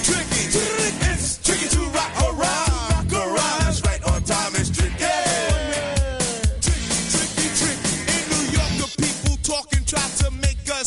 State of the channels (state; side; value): identical; both; correlation 1.00